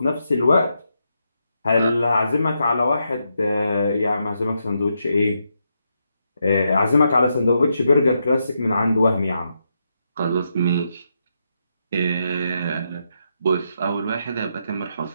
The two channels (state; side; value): inverted; both; correlation -0.82